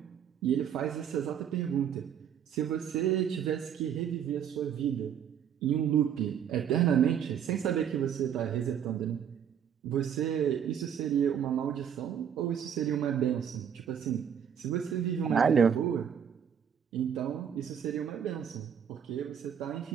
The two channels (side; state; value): left; quieter; 8.6 dB